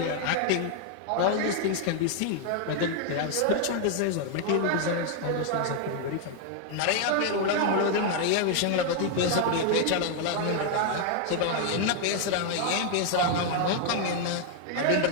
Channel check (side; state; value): both; different; correlation 0.00